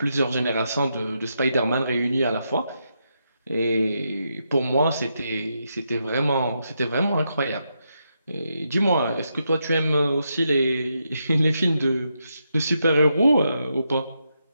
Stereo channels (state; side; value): inverted; both; correlation -0.83